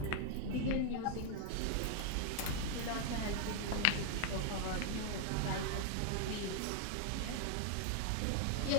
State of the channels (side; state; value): both; different; correlation 0.00